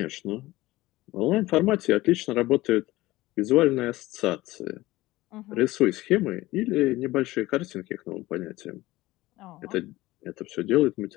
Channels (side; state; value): right; quieter; 18.3 dB